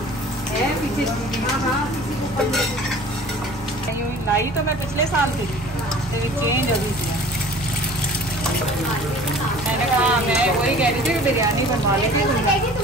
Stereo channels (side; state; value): both; normal; correlation 0.46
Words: है पीछे। हाँ, लाई तो मैं पिछले साल थी, चेंज अभी किया। मैंने कहा मैं वही कह रही थी बिरयानी बनवा लेती।